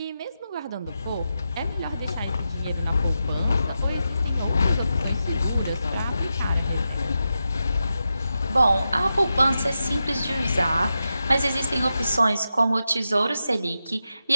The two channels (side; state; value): both; inverted; correlation -0.89